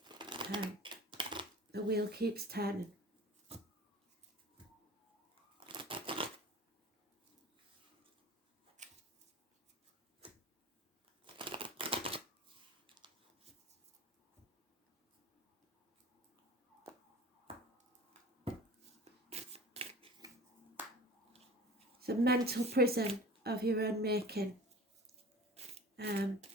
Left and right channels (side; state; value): both; normal; correlation 0.40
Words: The wheel keeps turning. It's a mental prison of your own making. You